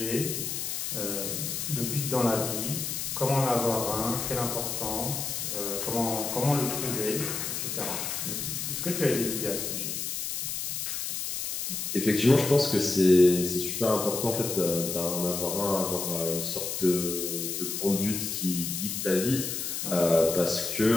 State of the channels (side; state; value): left; noise; hiss, 3 dB below the sound